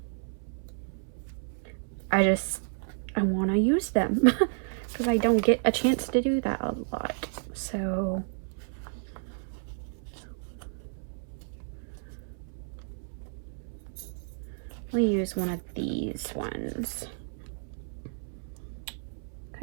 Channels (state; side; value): silent; left; 57 dB below the other